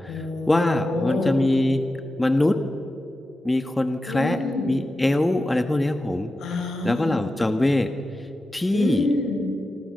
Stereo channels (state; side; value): normal; both; correlation 0.91